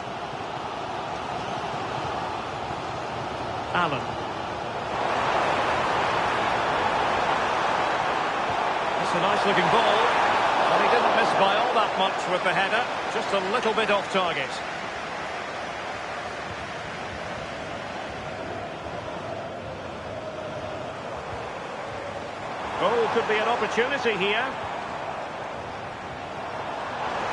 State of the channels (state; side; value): identical; both; correlation 1.00